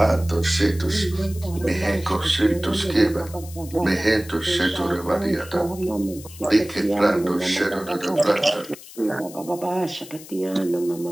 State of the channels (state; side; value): noise; left; hiss, 17 dB below the sound